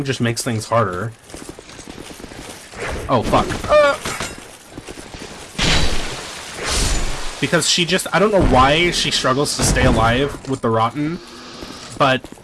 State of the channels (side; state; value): both; identical; correlation 1.00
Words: just makes things harder. Oh, fuck. Because she just, I don't know why she struggles to stay alive with the Rotten, but